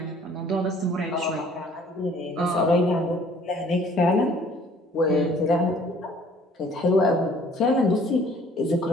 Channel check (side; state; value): both; normal; correlation 0.56